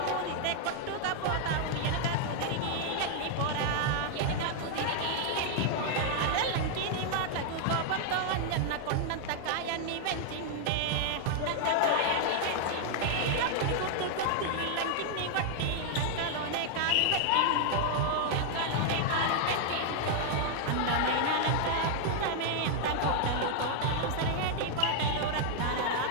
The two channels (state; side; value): different; both; correlation 0.00